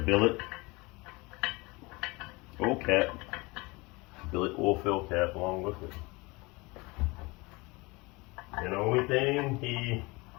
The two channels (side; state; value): right; quieter; 24.9 dB